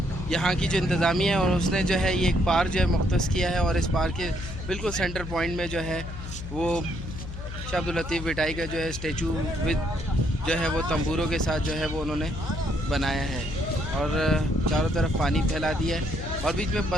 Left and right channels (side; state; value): left; noise; hum, 9 dB below the sound